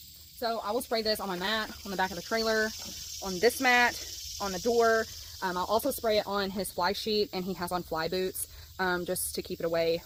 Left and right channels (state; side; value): identical; both; correlation 1.00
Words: So I will spray this on my mat, on the back of the trailer, on this mat, on the door. I'll also spray it on his fly sheet, and he has on fly boots just to keep it away.